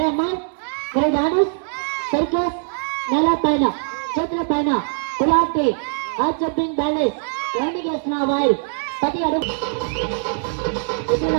అమ్మా మీరు దాడు సర్కస్ నెల పైన చేతుల పైన కులాంటి ఆ జంపింగ్ బ్యాలెన్స్ ల్యాండింగ్ చేస్తున్న వారు ప్రతి అడుగు ఇతర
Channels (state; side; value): silent; left; 59 dB below the other